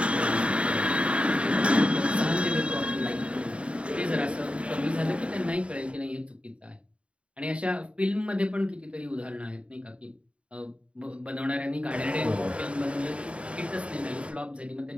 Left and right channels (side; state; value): left; late; 0.061 ms